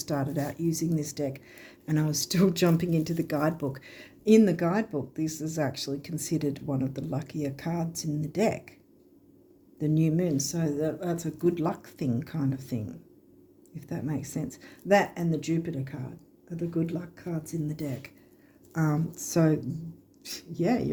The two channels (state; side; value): identical; both; correlation 1.00